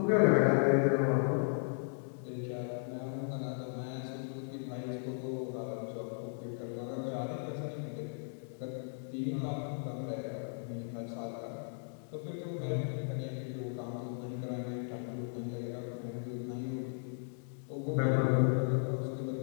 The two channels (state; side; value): silent; right; digital silence